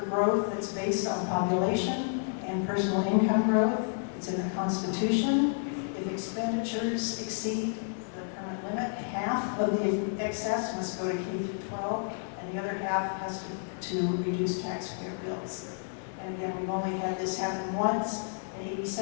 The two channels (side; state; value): right; silent; digital silence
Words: growth that's based on population and personal income growth. It's in the Constitution. If expenditures exceed the current limit, half of the excess must go to K through 12, and the other half has to reduce taxpayer bills. And again, we've only had this happen once in